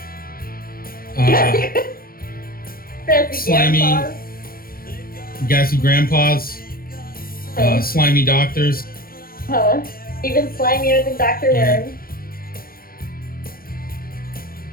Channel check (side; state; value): right; late; 0.42 ms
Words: Slimy- Grandpas. Gassy grandpas. Slimy doctors. Huh? Even slimier than Dr. Yeah. Worm.